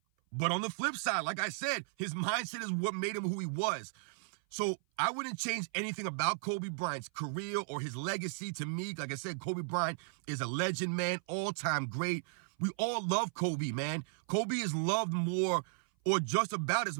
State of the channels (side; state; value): left; silent; 54 dB below the other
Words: But on the flip side, like I said, his mindset is what made him who he was. So I wouldn't change anything about Kobe Bryant's career or his legacy. To me, like I said, Kobe Bryant is a legend, man, all-time great. We all love Kobe, man. Kobe is loved more or just about as